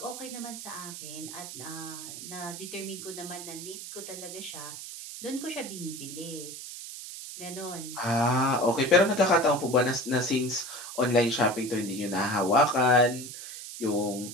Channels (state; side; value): noise; right; hiss, 10 dB below the sound